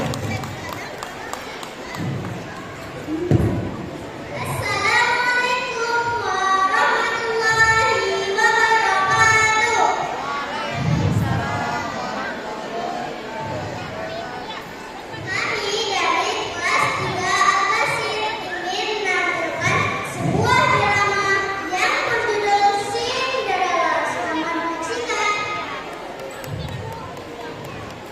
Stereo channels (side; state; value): both; identical; correlation 1.00